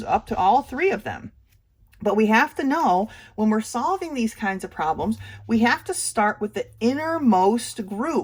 up to all three of them. But we have to know when we're solving these kinds of problems, we have to start with the innermost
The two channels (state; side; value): identical; both; correlation 1.00